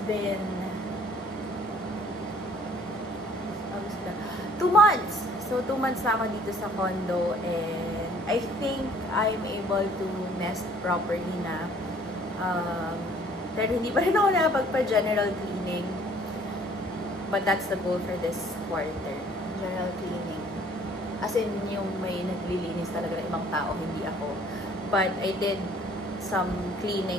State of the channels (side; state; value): both; normal; correlation 0.56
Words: been 2 months. So, 2 months na ako dito sa condo and I think I'm able to nest properly na. Pero hindi pa rin ako nakapagpa-general cleaning. But that's the goal for this quarter. General cleaning. As in, yung may naglilinis talaga ng ibang tao, hindi ako. But I did some